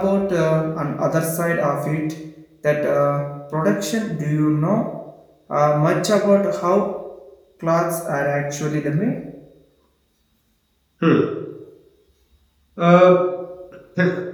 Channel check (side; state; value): both; identical; correlation 1.00